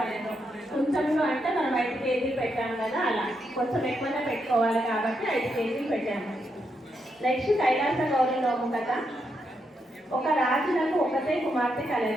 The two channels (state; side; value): normal; both; correlation 0.81